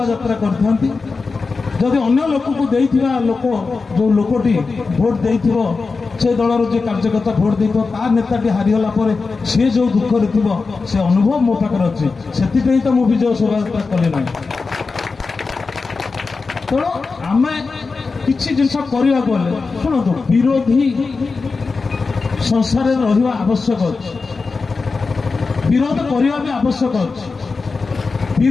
यात्रा करथांती जदि अन्य लोक को देइथिबा लोक जो लोकटी भोट देइथिबो से दलर जो कार्यकर्ता भोट देइथिबो ता नेताटी हारिगला पर से जो दुख रे थिबो से अनुभव मो पाकर अछि सेति तो मो विजय शोभा यात्रा कले नै तो आमे किछि जिनस करिया गले सुनतो विरोधी संसार रे रहिबा आवश्यक अछि विरोध करिया भी आवश्यक अछि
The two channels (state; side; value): quieter; right; 4.3 dB